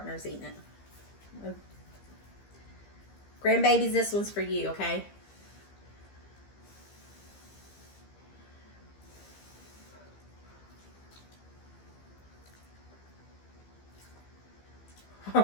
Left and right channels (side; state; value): right; late; 15 ms